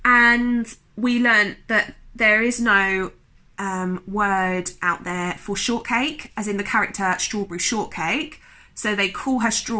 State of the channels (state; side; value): identical; both; correlation 1.00